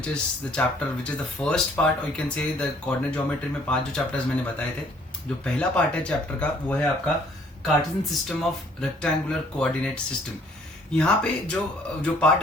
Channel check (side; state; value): both; normal; correlation 0.61